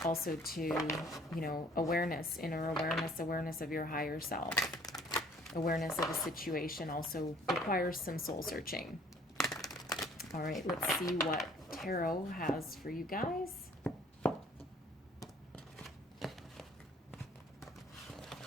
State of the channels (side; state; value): both; normal; correlation 0.56